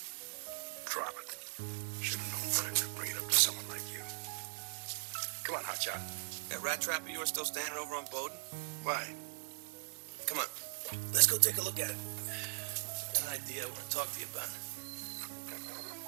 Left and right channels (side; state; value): left; silent; digital silence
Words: Drop it. Should have known better than to bring it up to someone like you. Come on, hotshot. That rat trap of yours still standing over on Bowden? Why? Come on. Let's go take a look at it. Got an idea I want to talk to you about.